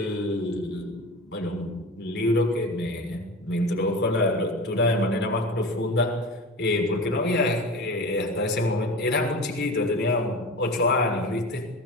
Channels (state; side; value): normal; both; correlation 0.32